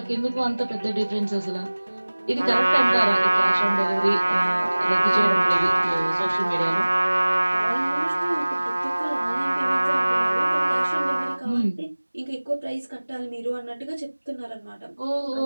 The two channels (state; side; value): inverted; both; correlation -1.00